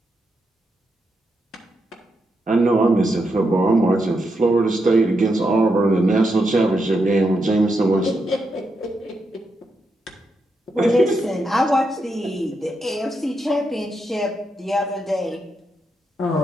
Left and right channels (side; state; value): both; normal; correlation 0.83